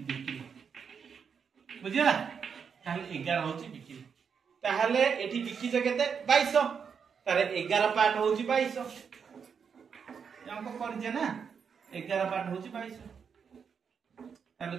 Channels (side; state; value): left; quieter; 6.6 dB